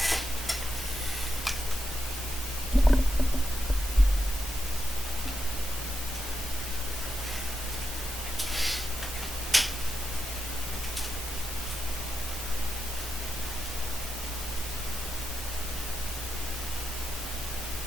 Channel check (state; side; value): normal; both; correlation 0.86